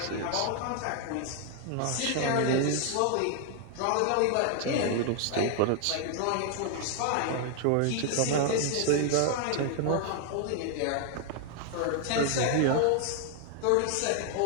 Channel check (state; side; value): different; both; correlation 0.00